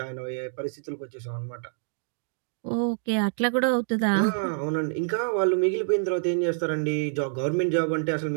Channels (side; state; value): left; silent; digital silence